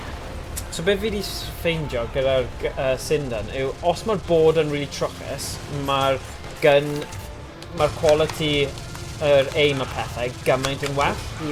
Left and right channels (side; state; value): both; identical; correlation 1.00